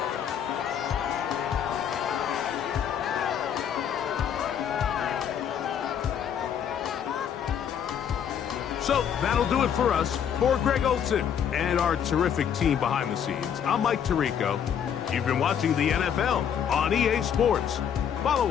So that'll do it for us. For Greg Olsen and our terrific team behind the scenes, I'm Mike Tirico. You've been watching the NFL on EA Sports.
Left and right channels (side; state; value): right; quieter; 8.5 dB